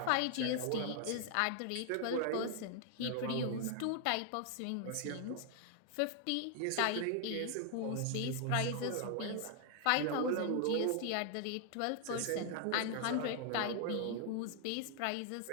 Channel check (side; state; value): both; different; correlation 0.00